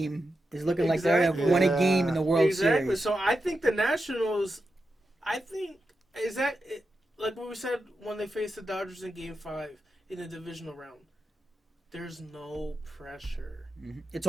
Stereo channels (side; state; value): both; normal; correlation 0.88